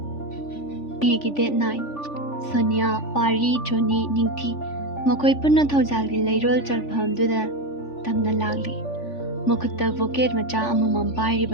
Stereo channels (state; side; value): late; right; 3.4 ms